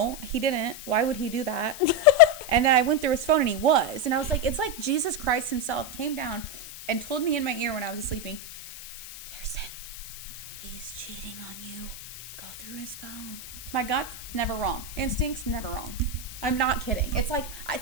he didn't. Why would he do that? And then I went through his phone and he was. And I was like, it's like Jesus Christ himself came down and told me in my ear when I was sleeping, Kirsten, he's cheating on you. Go through his phone. My gut's never wrong. Instincts never wrong. I'm not kidding. It's like,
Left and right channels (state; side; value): noise; left; hiss, 13 dB below the sound